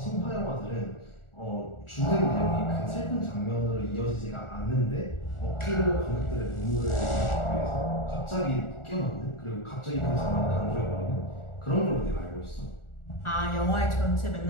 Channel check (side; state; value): right; late; 1.4 ms